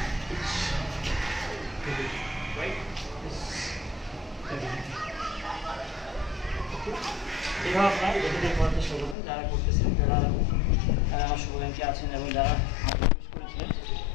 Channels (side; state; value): right; drops out; at 9.2 s